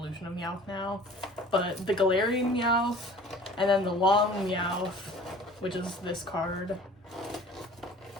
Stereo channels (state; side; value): normal; both; correlation 0.46